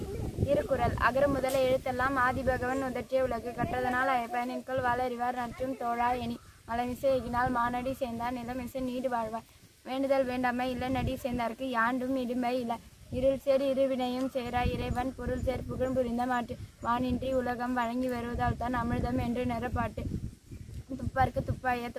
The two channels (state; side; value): identical; both; correlation 1.00